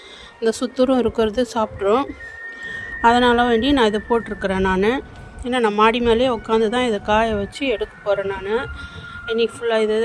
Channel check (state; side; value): identical; both; correlation 1.00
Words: இந்த சுத்தூரம் இருக்கிறது சாப்பிட்ரும். அதனால் வேண்டி நான் இதை போட்டிருக்கிறேன். ஏன்னா நான் மாடி மேலேயே உட்காந்து தான் இதை காய வச்சு எடுக்க போகிறேன். இன்றைக்கி ஃபுல்லாக